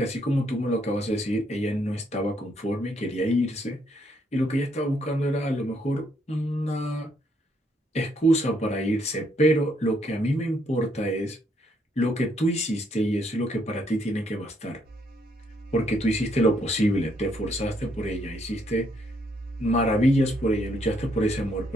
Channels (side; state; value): both; normal; correlation 0.72